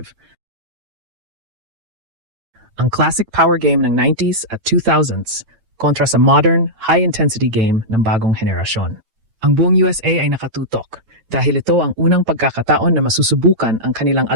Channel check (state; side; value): late; left; 9.0 ms